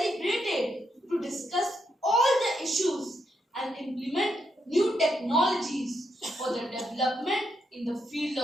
to discuss all the issues and implement new technologies for the development in the field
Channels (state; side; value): normal; both; correlation 0.80